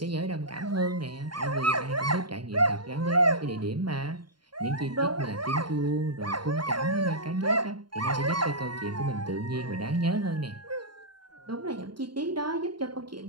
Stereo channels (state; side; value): late; left; 0.72 ms